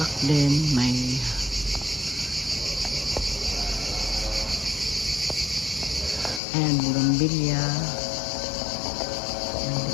din, may ayan, bugambilya.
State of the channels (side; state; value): right; drops out; at 6.4 s